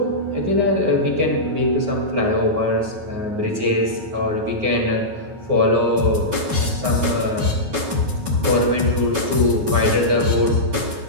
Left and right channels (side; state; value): left; late; 9.5 ms